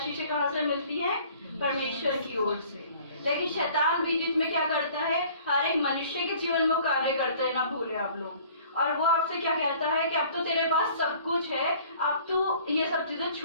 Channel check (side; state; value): both; inverted; correlation -0.52